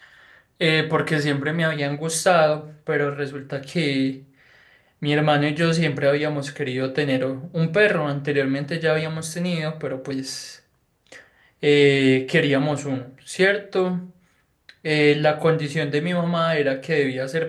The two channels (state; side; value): identical; both; correlation 1.00